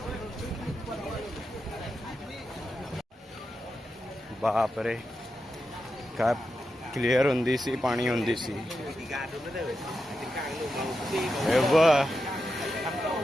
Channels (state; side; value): normal; both; correlation 0.88